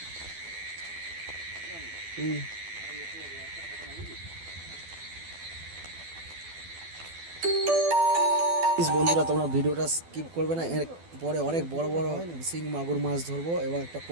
বন্ধুরা, তোমরা ভিডিওটা স্কিপ করবে না, এর পরে অনেক বড় বড় শিং মাগুর মাছ ধরবো এবং একটা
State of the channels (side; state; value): left; late; 12 ms